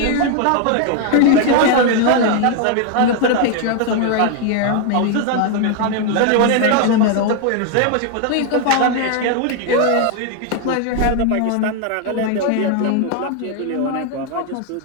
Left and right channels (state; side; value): different; both; correlation 0.01